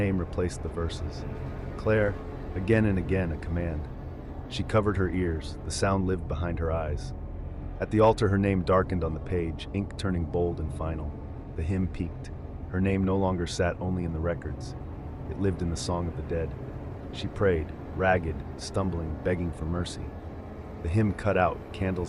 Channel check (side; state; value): both; identical; correlation 1.00